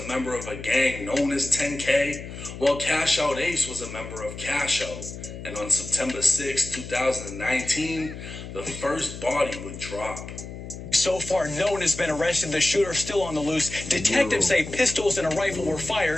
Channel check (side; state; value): left; noise; hum, 11 dB below the sound